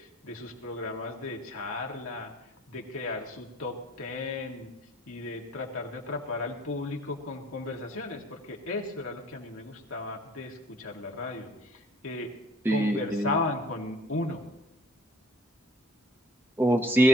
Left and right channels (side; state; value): both; normal; correlation 0.54